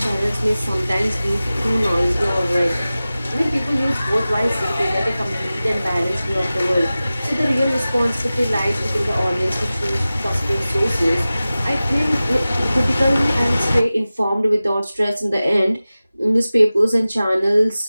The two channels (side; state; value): both; inverted; correlation -0.96